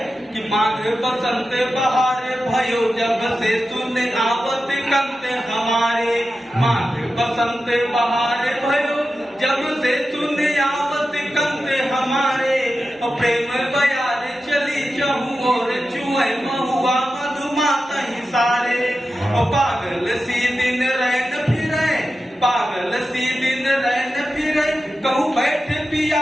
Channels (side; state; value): both; normal; correlation 0.92